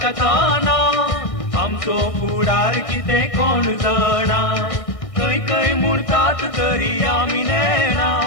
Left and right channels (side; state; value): right; late; 1.6 ms